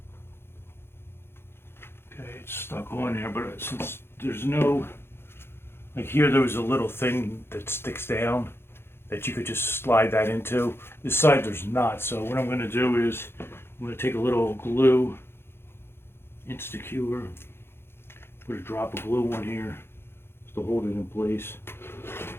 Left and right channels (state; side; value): late; right; 0.11 ms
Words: Okay, it's stuck on there, but since there's no, like here there was a little thing that sticks down that you could just slide that into. This side there's not, so what I'm going to do is I'm going to take a little glue, Insecure, put a drop of glue on here just to hold it in place.